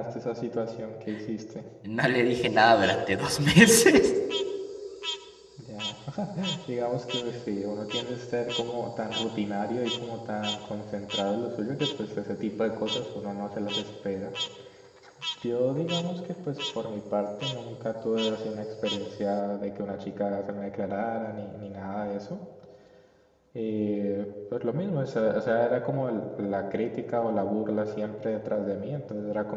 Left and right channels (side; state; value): both; identical; correlation 1.00